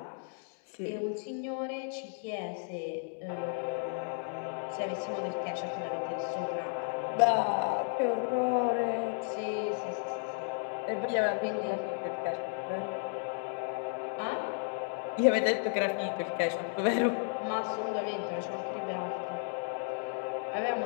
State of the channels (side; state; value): right; silent; 55 dB below the other